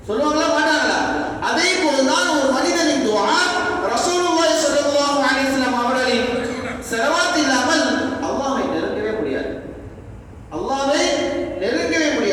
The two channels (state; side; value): identical; both; correlation 1.00